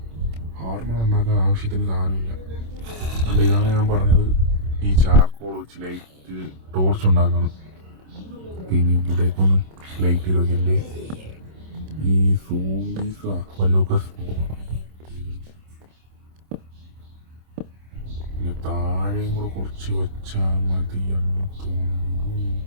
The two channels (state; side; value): late; left; 26 ms